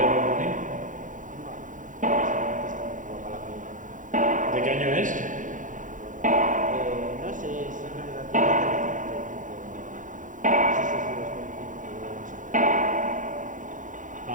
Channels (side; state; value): left; late; 0.38 ms